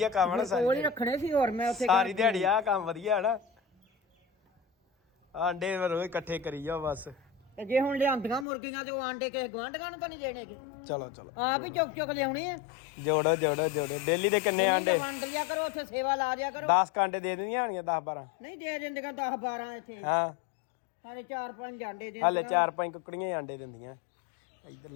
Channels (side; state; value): right; drops out; at 8.5 s